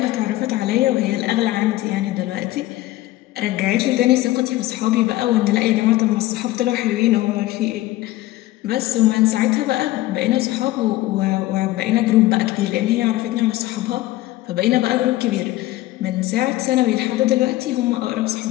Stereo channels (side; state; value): right; quieter; 16.8 dB